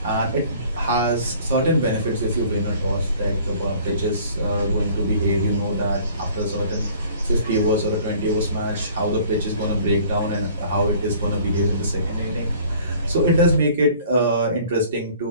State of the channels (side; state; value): both; inverted; correlation -0.52